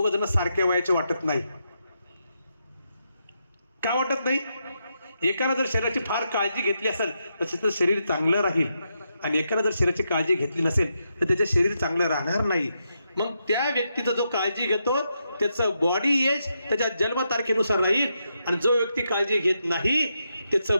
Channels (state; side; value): inverted; both; correlation -0.83